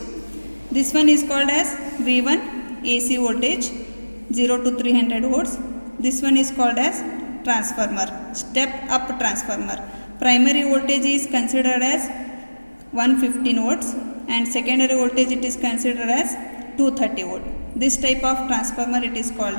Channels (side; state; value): both; inverted; correlation -1.00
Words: This one is called as V1 AC voltage 0 to 300 volts. This one is called as transformer, step up transformer. Primary voltage is considered as 115 volts and secondary voltage it is considered as 230 volt. This type of transformer it is